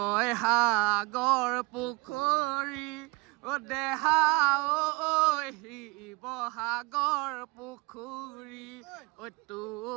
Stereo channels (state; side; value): quieter; left; 26.3 dB